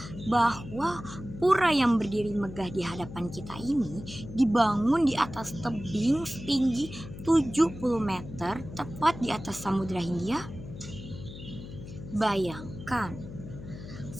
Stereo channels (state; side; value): noise; left; hum, 12 dB below the sound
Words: bahwa pura yang berdiri megah di hadapan kita ini dibangun di atas tebing setinggi 70 meter tepat di atas Samudra Hindia? Bayangkan,